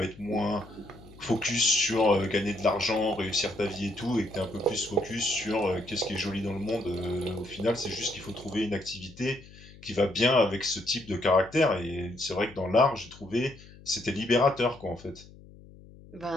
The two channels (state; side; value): noise; left; hum, 21 dB below the sound